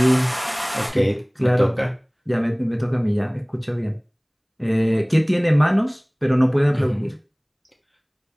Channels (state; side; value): identical; both; correlation 1.00